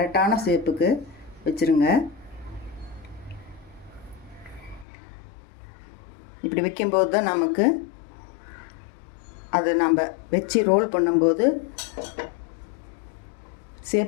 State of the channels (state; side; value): drops out; right; at 4.9 s